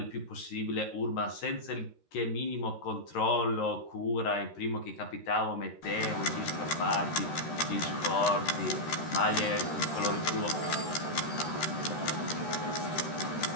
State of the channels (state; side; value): late; right; 13 ms